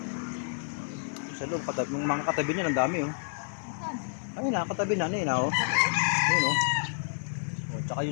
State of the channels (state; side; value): silent; right; digital silence